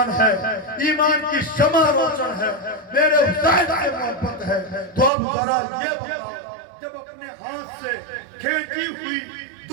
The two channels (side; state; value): left; drops out; at 5.1 s